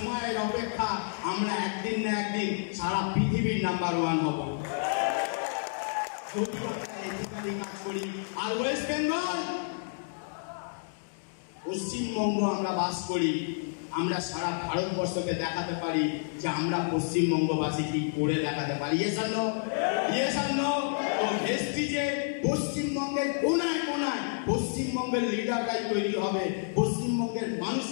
অপেক্ষা, আমরা একদিন না একদিন সারা পৃথিবীর নাম্বার 1 হব যদি আমরা এথিক্যালি কাজ করি। আর ওয়েস্ট বেঙ্গল, পশ্চিমবঙ্গ আমরা বাস করি, আমরা সারা ভারতবর্ষকে দেখাতে পারি যে আমরা পশ্চিমবঙ্গবাসী কি করে দেখাতে পারি। Yes or no? Yes or no? তো ভেস্টিজে পশ্চিমবঙ্গের কোনায় কোনায় পশ্চিমবঙ্গের লিডাররাই তৈরি হবে। পশ্চিমবঙ্গের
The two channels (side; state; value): right; silent; digital silence